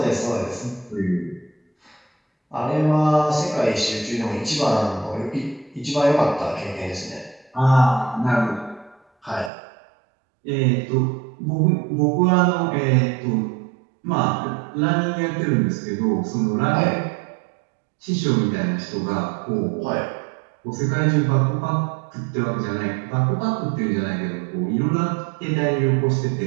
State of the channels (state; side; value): drops out; left; at 9.5 s